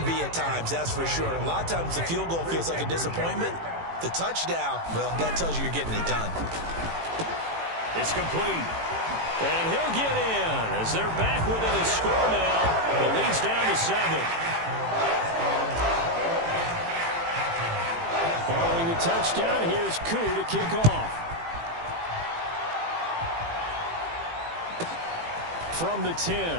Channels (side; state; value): left; late; 18 ms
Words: be at times, that's for sure. A lot of times the field goal feels like a disappointment. The touchdown, well, that tells you you're getting it done. It's complete. And he'll get in as they're back within his score now. The lead's down to 7. Following the touchdown, here's Koo to kick off. From the 10.